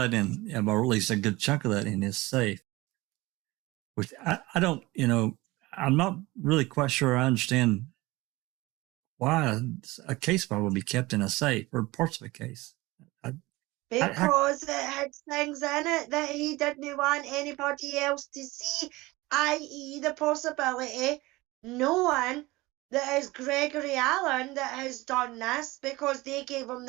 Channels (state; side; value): quieter; left; 20.8 dB